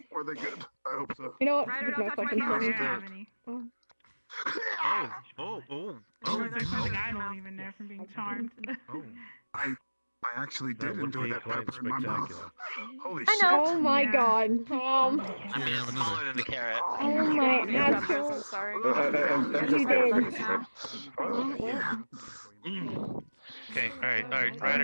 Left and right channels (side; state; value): both; inverted; correlation -1.00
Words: Were they good? I hope so. You know what? Ryder, There's don't no touch my fucking camera. I chili. don't have any. There's something I don't even know from being charmed. I actually That did would enjoy be that quite pepper in my mouth. spectacular. Holy I shit. know. Oh my Yeah. god. I mean, it's smaller than the carrot. Oh my Peppers, actual. I'm sorry. You did. Okay, alright,